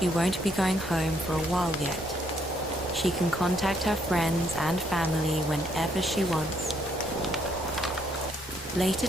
won't be going home for a while yet, she can contact her friends and family whenever she wants. Later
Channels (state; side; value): normal; both; correlation 0.71